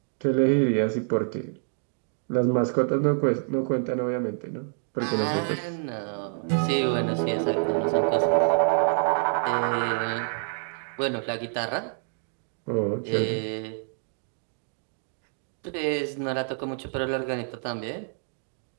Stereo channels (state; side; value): silent; left; digital silence